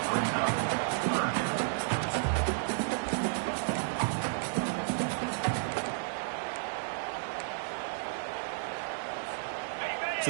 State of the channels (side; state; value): left; silent; 56 dB below the other